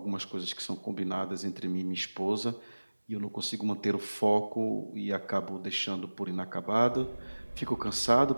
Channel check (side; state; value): both; inverted; correlation -1.00